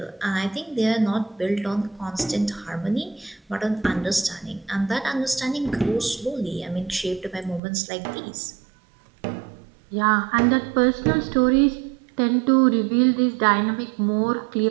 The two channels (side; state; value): left; drops out; at 7.6 s